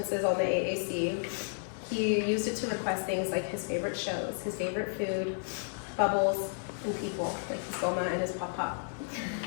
on the AAC, he used it to request things like his favorite shows, his favorite food, bubbles, and people, like his Goma and his Pop-Pop.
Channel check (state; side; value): silent; right; digital silence